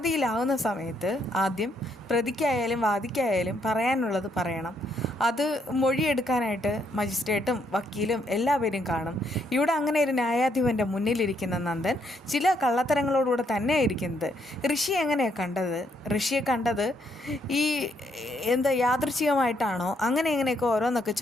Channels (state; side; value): normal; both; correlation 0.73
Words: സമയത്ത് ആദ്യം പ്രതിക്കായാലും വാദിക്കായാലും പറയാനുള്ളത് പറയണം. അത് മൊഴിയെടുക്കാനായിട്ട് മജിസ്ട്രേറ്റും വക്കീലും എല്ലാവരും കാണും. ഇവിടെ അങ്ങനെ ഒരു ന്യായാധിപൻ്റെ മുന്നിലിരിക്കുന്ന നന്ദൻ ചില കള്ളത്തരങ്ങളോടുകൂടെ തന്നെയാണ് ഇരിക്കുന്നത്. ഋഷി എങ്ങനെയാണ് കണ്ടത്? ഋഷിയെ കണ്ടത് ഈ യാദൃച്ഛികമായിട്ടാണോ? എങ്ങനെയൊക്കെ ഓരോന്നൊക്കെ